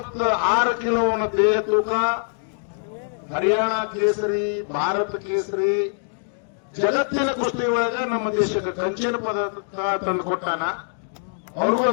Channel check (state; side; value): silent; right; digital silence